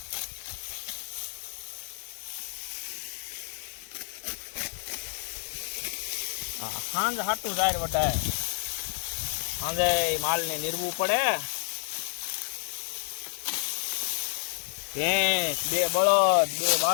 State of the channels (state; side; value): silent; right; digital silence